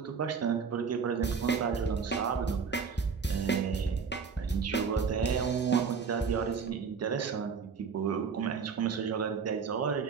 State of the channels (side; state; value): left; quieter; 5.8 dB